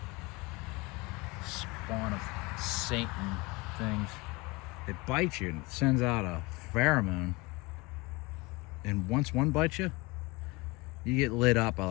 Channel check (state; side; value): quieter; right; 24.1 dB